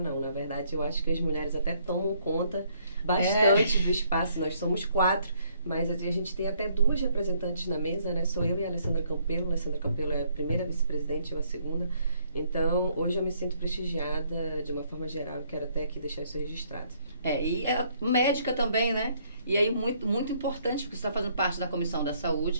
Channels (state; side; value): inverted; both; correlation -0.67